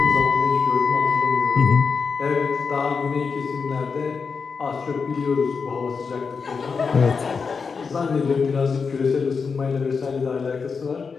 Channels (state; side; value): quieter; right; 5.3 dB